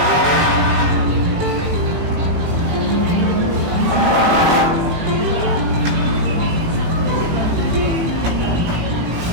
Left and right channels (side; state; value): left; late; 18 ms